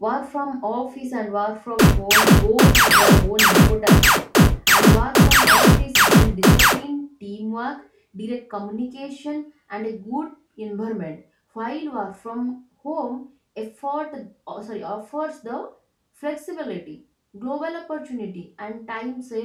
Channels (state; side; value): identical; both; correlation 1.00